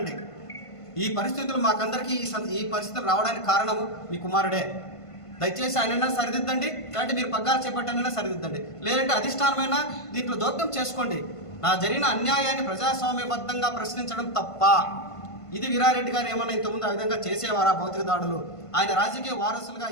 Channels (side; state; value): right; late; 1.5 ms